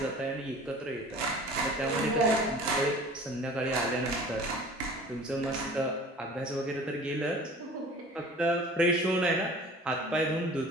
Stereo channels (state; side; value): normal; both; correlation 0.44